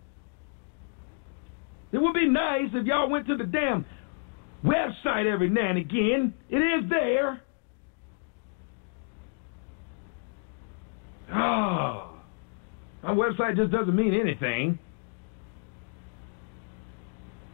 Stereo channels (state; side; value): quieter; right; 38.5 dB